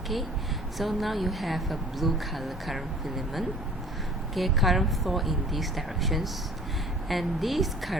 Okay, so now you have a blue color current filament. Okay, current flow in these directions, and this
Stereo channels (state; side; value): normal; both; correlation 0.49